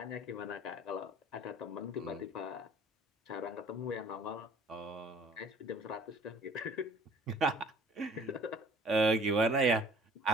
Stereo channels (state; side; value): normal; both; correlation 0.53